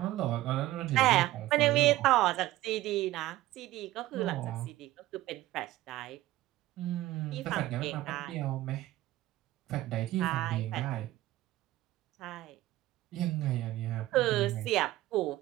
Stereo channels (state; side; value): quieter; left; 16.2 dB